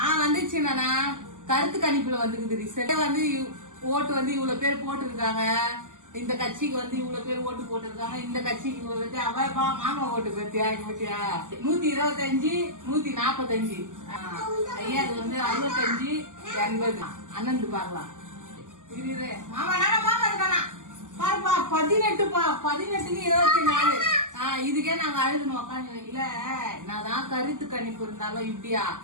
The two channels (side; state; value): left; late; 0.87 ms